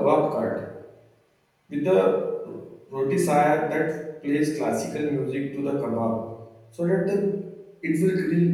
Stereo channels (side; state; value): both; identical; correlation 1.00